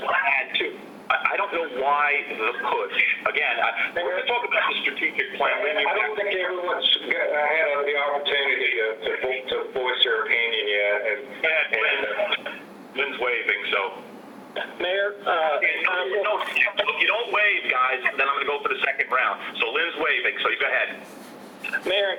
too. I don't know why the push. Again, we're going to talk about the strategic plan. I don't think everyone's had the opportunity to voice their opinion yet. And Lynn's waving, so. Mayor? If you don't wave, guys, then I'm going to go for the second round. So Lynn's waving, so you go ahead. Mayor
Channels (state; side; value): identical; both; correlation 1.00